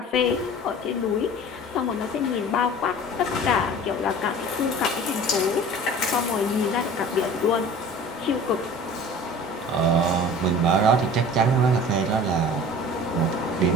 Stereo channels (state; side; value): normal; both; correlation 0.42